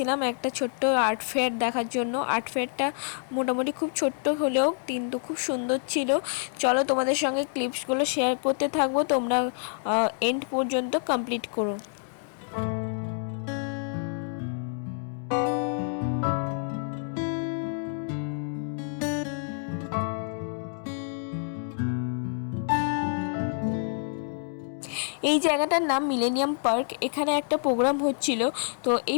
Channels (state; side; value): silent; right; 60 dB below the other